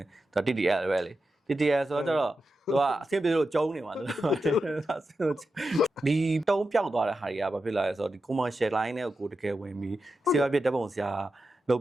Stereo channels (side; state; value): both; normal; correlation 0.90